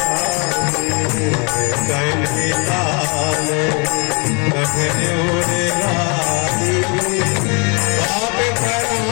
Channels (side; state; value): right; quieter; 33.3 dB